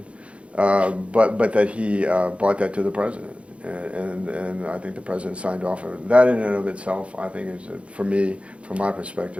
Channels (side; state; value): left; late; 0.061 ms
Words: But that he brought that to the president, and I think the president signed off on it. That in and of itself, I think, is, for me, from my